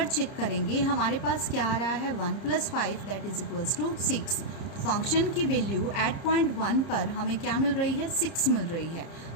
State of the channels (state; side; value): late; right; 30 ms